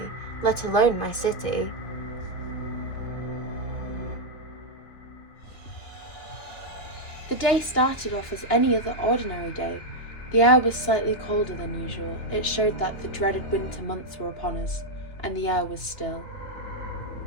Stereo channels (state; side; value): late; right; 2.7 ms